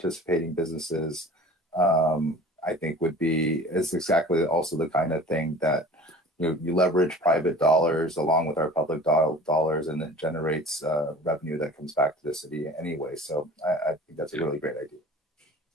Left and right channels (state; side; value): normal; both; correlation 0.42